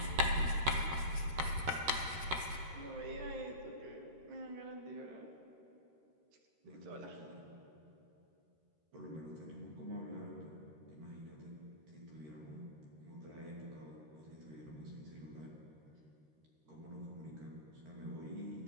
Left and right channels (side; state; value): left; late; 13 ms